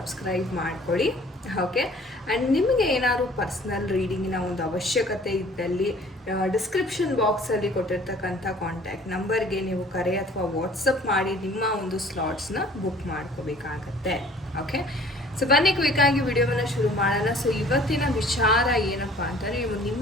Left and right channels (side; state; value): both; normal; correlation 0.52